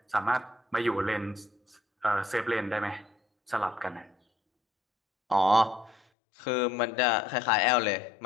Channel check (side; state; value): right; drops out; at 6.0 s